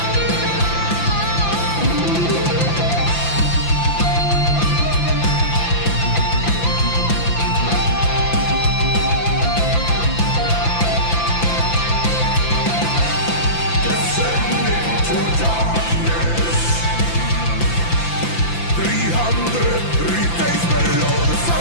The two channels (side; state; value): right; late; 5.9 ms